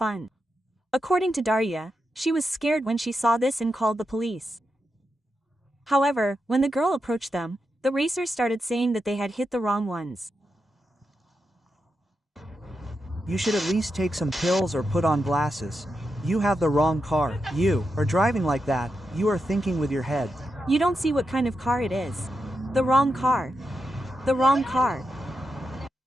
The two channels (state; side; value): normal; both; correlation 0.87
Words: According to Darya, she was scared when she saw this and called the police. However, when the girl approached them, the racers started saying that they had hit the wrong ones. You should at least take some pills or put on glasses. You have the wrong car. You are driving like that. You are thinking with your head. You don't see what kind of car it is. The wrong car. The wrong car.